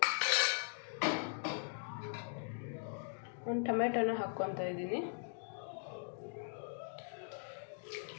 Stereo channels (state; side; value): silent; right; digital silence